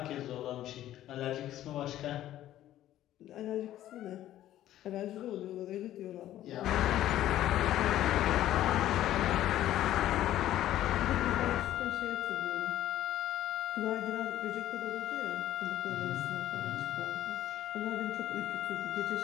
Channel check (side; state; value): right; quieter; 13.1 dB